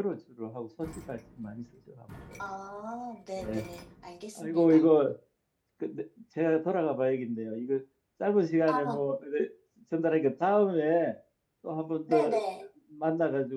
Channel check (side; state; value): both; identical; correlation 1.00